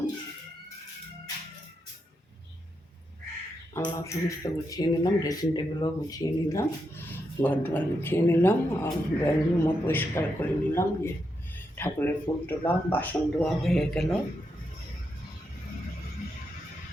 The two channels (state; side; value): normal; both; correlation 0.83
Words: আলনা সমস্ত গুছিয়ে নিলাম, ড্রেসিং টেবিলও গুছিয়ে নিলাম, ঘর দুয়ার গুছিয়ে নিলাম, আর ড্রয়িং রুমও পরিষ্কার করে নিলাম। যে ঠাকুরের ফুল তোলা, বাসন ধোয়া হয়ে গেল।